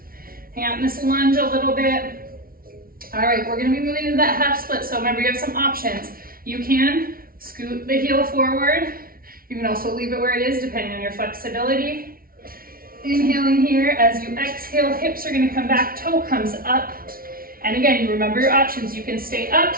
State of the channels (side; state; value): left; late; 0.43 ms